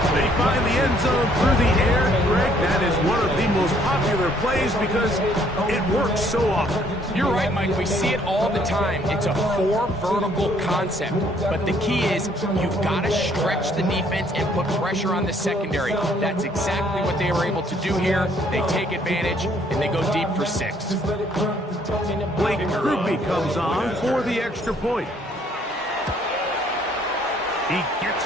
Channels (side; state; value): both; normal; correlation 0.64